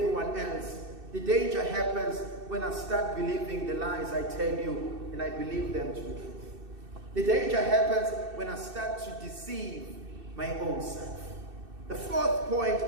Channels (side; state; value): left; late; 2.6 ms